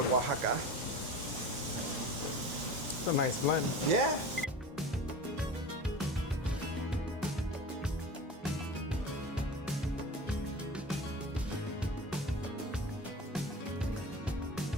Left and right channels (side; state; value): both; normal; correlation 0.33